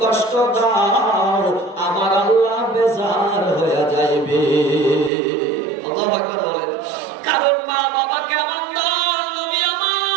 কষ্ট দাও আমার আল্লাহ বেজার বেকার হয়ে যাইবে। আল্লাহু আকবার বলেন। কারণ মা বাবা কেমন দল, নবী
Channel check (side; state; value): left; drops out; at 5.1 s